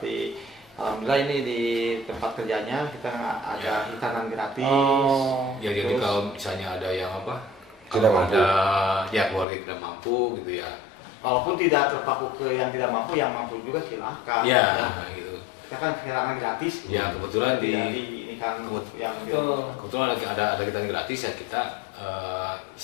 alhamdulillah ini di tempat kerjanya kita ada hitanan gratis. ya jadi kalau misalnya ada yang Tidak kalau mampu. ada ya keluarga tidak mampu gitu ya. Walaupun tidak terpaku ke yang tidak mampu, yang mampu juga silahkan. Ya, gitu. kita kan kehilangan gratis. Ya kebetulan di ini kan yang Betul. kebetulan ada kita yang gratis ya kita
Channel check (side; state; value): right; drops out; at 9.5 s